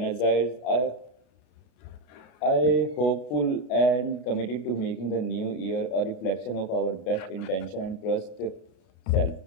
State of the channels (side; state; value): right; late; 32 ms